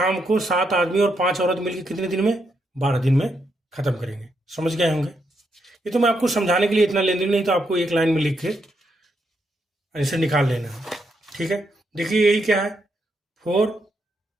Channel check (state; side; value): normal; both; correlation 0.80